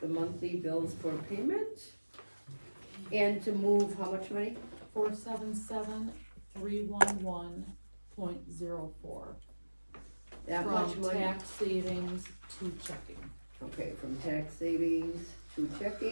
the monthly bills for payment. And to move how much money? 477,311.04. That much From money? tax savings to checking. Okay, from tax savings to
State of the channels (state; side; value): inverted; both; correlation -1.00